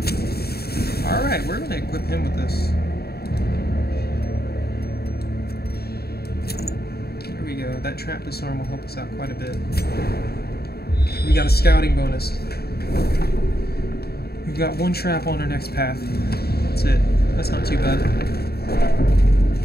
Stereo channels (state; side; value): late; right; 0.46 ms